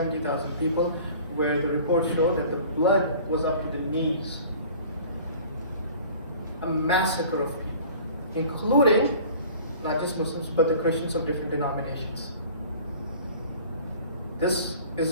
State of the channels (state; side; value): inverted; both; correlation -0.46